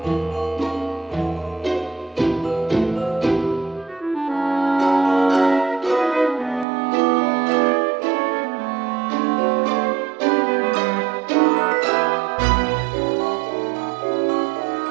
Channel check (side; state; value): left; drops out; at 6.7 s